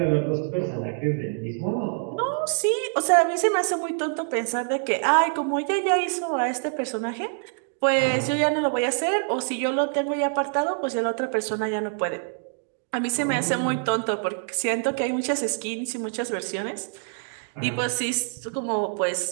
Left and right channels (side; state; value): left; silent; 61 dB below the other